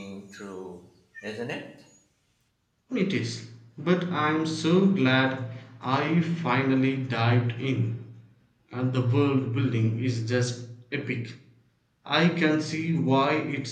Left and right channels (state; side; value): identical; both; correlation 1.00